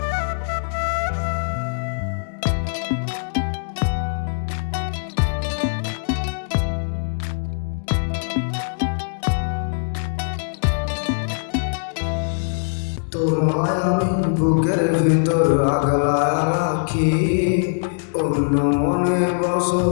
তোমায় আমি বুকের ভিতর আগলা রাখি, অন্য মনে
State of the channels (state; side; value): silent; right; digital silence